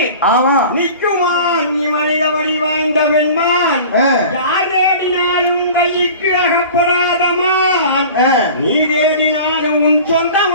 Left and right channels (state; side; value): inverted; both; correlation -0.40